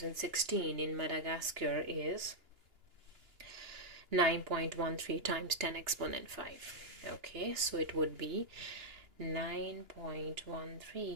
in Madagascar is 9.13 times 10 exponent 5. Okay, so it would be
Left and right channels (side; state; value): left; late; 2.9 ms